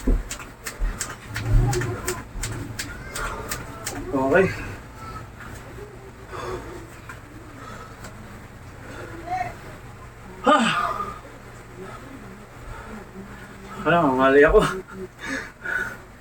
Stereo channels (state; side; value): identical; both; correlation 1.00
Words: Okay. Parang mali ako.